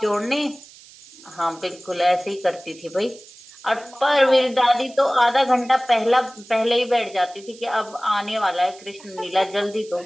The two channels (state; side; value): noise; right; hiss, 22 dB below the sound